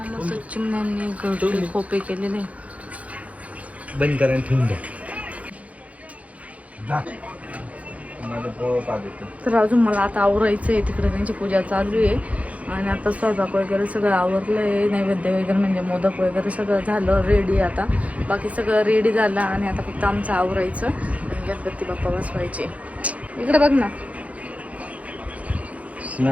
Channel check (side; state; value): left; late; 0.067 ms